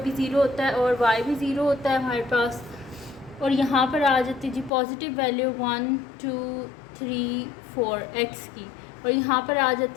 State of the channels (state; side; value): drops out; right; at 4.7 s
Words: ज़ीरो होता है और वाई भी ज़ीरो होता है हमारे पास। और यहाँ पर आ जाती है जी पॉजिटिव वैल्यू 1 2 3 4 एक्स की, और यहाँ पर आ